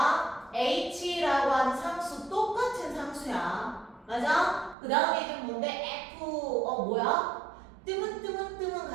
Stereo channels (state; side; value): drops out; left; at 4.8 s